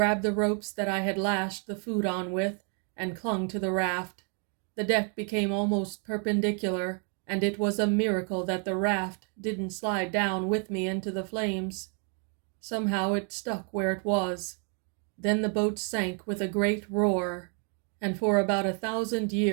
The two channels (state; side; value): quieter; left; 39.7 dB